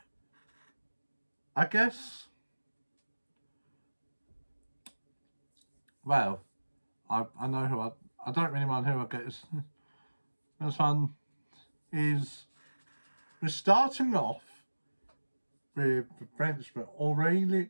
I guess, well, I know who I don't really mind who I get. This one is, we're starting off with the Frenchman, Aurelie,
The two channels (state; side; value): inverted; both; correlation -1.00